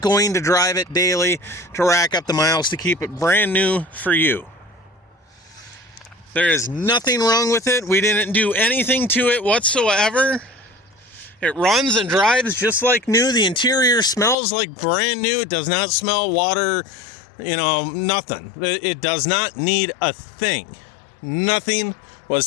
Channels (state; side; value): drops out; right; at 14.4 s